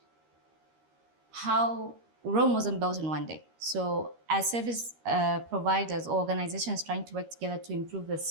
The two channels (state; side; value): late; left; 13 ms